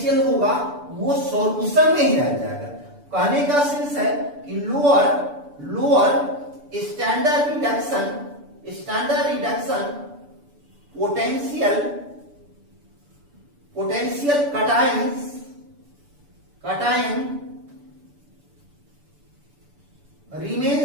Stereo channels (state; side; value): late; left; 6.9 ms